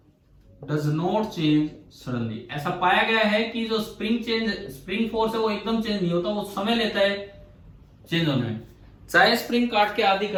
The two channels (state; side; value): identical; both; correlation 1.00